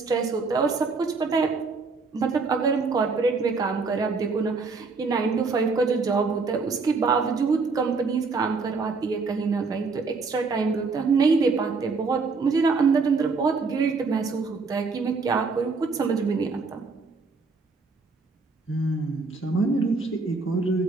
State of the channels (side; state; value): left; quieter; 4.4 dB